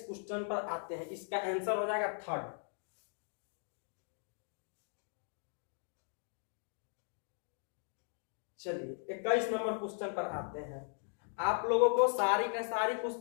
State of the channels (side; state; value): right; silent; 52 dB below the other